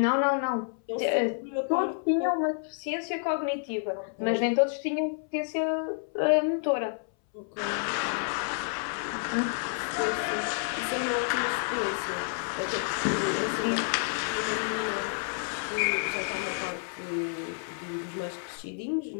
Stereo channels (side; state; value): right; silent; 58 dB below the other